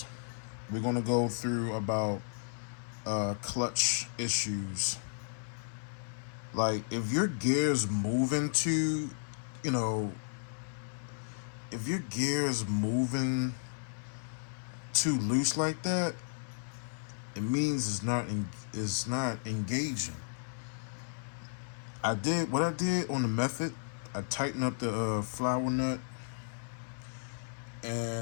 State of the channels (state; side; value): silent; right; 55 dB below the other